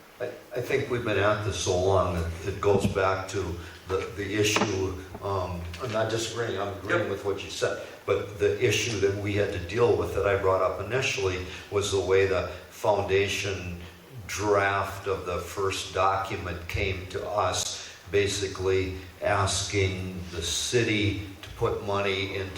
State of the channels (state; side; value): identical; both; correlation 1.00